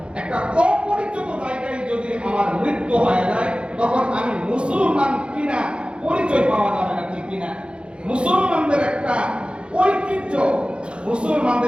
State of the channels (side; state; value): left; late; 0.056 ms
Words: একটা অপরিচিত জায়গায় যদি আমার মৃত্যু হয়ে যায়, তখন আমি মুসলমান কিনা পরিচয় পাওয়া যাবে না। ঠিক কিনা? মুসলমানদের একটা ঐতিহ্য,